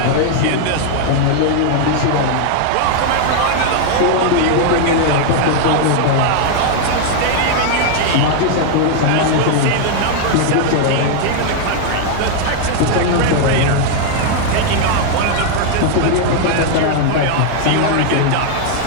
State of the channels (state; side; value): different; both; correlation 0.00